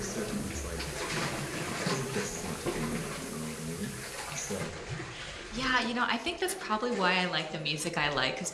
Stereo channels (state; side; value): identical; both; correlation 1.00